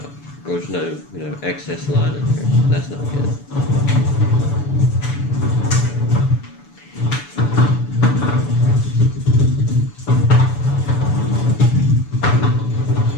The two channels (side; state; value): right; late; 6.9 ms